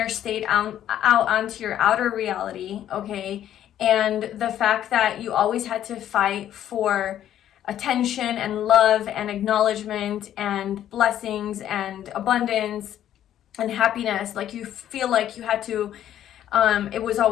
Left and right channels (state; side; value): quieter; right; 11.2 dB